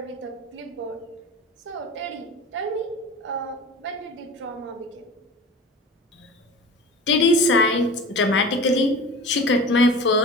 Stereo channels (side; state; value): both; normal; correlation 0.36